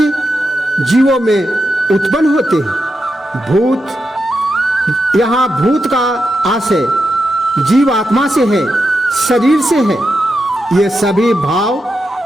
जीवों में उत्पन्न होते हैं। भूत, यहाँ भूत का आशय जीव आत्मा से है, शरीर से है। ये सभी भाव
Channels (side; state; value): both; normal; correlation 0.87